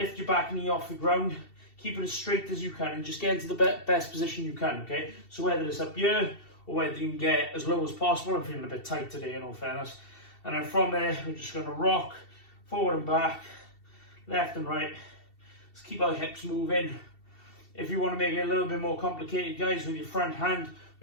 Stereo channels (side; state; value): right; late; 2.7 ms